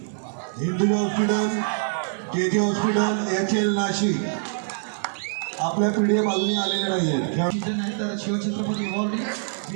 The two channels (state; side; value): silent; left; digital silence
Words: Hinduja hospital KJ hospital HL Nashik आपल्या PDF अजूनही आलेल्या नाही आहेत। तर शिवछत्रपती अवॉर्डी